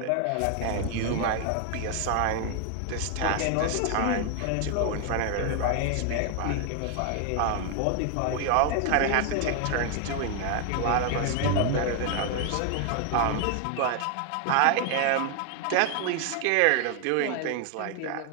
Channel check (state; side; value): different; both; correlation 0.00